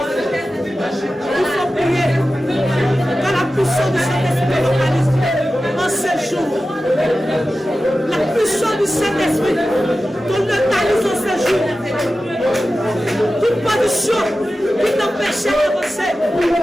Il faut prier. Dans la puissance du Saint-Esprit localise en ce jour. La puissance du Saint-Esprit qu'on localise en ce jour. Toute position qui t'empêchait d'avancer,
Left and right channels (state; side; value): normal; both; correlation 0.94